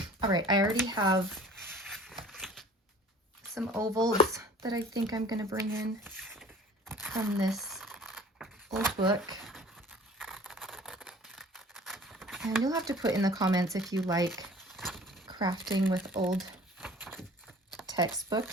All right, I already have some ovals that I think I'm going to bring in from this old book. And you'll have to put in the comments if you like crafting with old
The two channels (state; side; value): normal; both; correlation 0.47